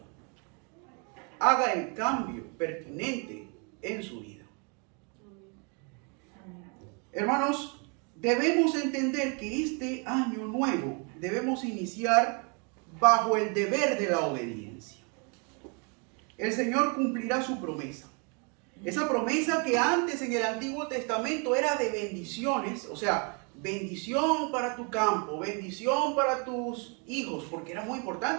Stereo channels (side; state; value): left; quieter; 35.4 dB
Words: haga el cambio pertinente en su vida. Hermanos, debemos entender que este año nuevo debemos iniciar bajo el deber de la obediencia. El Señor cumplirá su promesa. Esa promesa que antes en el Antiguo Testamento era de bendiciones, o sea, bendición para tu campo, bendición para tus hijos, porque era muy